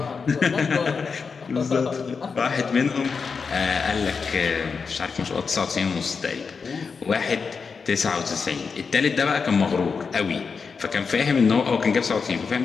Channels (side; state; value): right; quieter; 5.3 dB